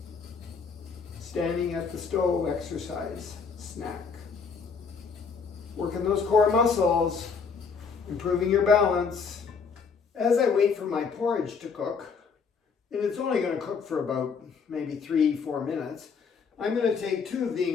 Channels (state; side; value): quieter; right; 5.5 dB